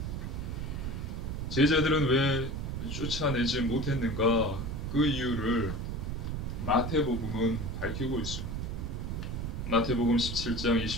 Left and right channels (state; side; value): noise; right; rumble, 4 dB below the sound